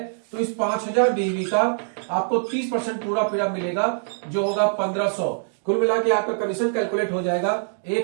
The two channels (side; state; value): left; silent; digital silence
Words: तो इस 5,000 बीवी का आपको 30% पूरा पीड़ा मिलेगा, जो होगा 1,500। कुल मिला के आपका कमीशन कैलकुलेट हो जाएगा